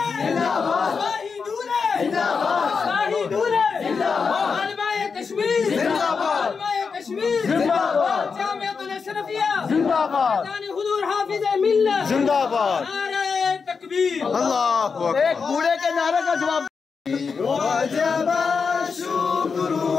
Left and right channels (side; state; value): right; quieter; 5.4 dB